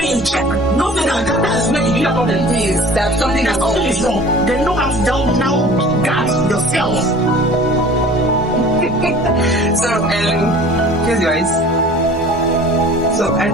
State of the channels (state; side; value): normal; both; correlation 0.45